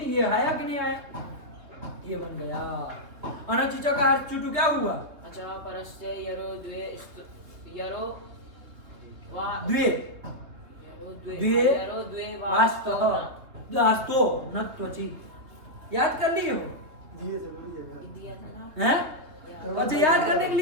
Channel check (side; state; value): left; late; 3.4 ms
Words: ये आया कि नहीं आया? ये बन गया। अनच का चुटू क्या हुआ? अचः परस्य यरो द्वे यरो वा द्वे द्वे यरो द्वे वास्तव वास्तो न त्वचि। याद कर लिए हो? दिया था ना। हैं? अच्छा याद करने के